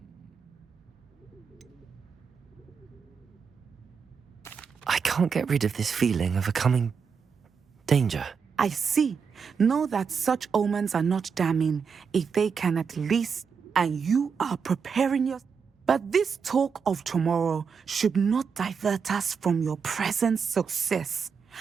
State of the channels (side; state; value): left; quieter; 6.1 dB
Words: I can't get rid of this feeling of a coming danger. I see. Know that such omens are not damning if they can at least, and you are preparing your. But this talk of tomorrow should not divert us from your present success.